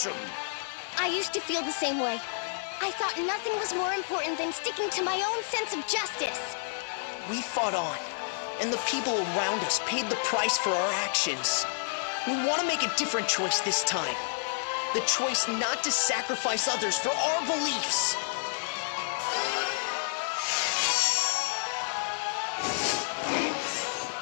I used to feel the same way. I thought nothing was more important than sticking to my own sense of justice. We fought on, and the people around us paid the price for our actions. We want to make a different choice this time. The choice not to sacrifice others for our beliefs.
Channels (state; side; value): silent; right; digital silence